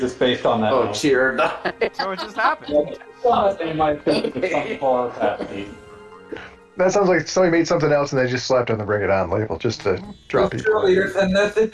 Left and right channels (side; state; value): both; identical; correlation 1.00